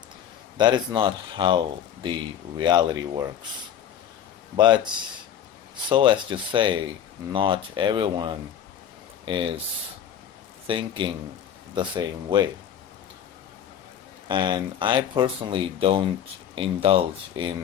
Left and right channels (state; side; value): quieter; right; 9.4 dB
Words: That is not how the reality works. But so as to say, not everyone is thinking the same way. And I personally don't indulge